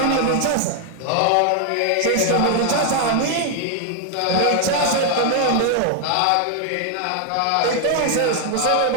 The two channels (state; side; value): different; both; correlation 0.00